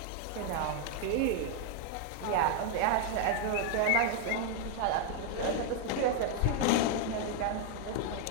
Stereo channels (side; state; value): both; different; correlation 0.01